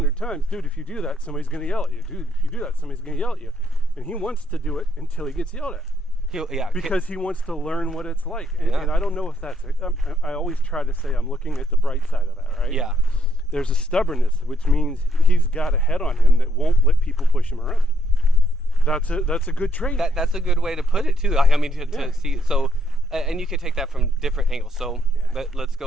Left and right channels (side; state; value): both; normal; correlation 0.72